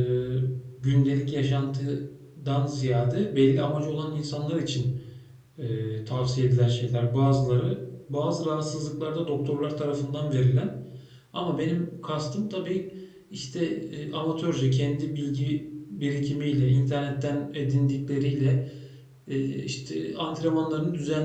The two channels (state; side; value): identical; both; correlation 1.00